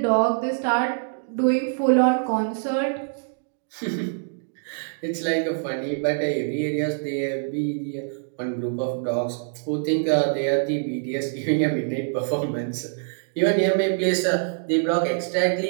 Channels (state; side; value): silent; left; digital silence